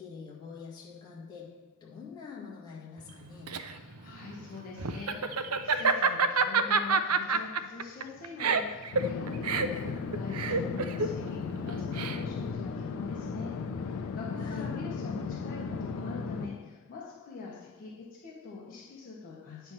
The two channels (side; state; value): both; normal; correlation 0.07